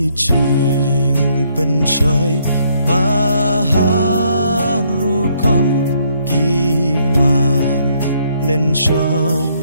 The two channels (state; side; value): inverted; both; correlation -0.70